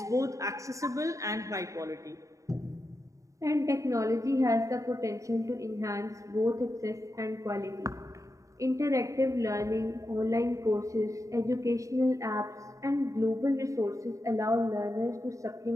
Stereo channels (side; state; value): left; late; 0.16 ms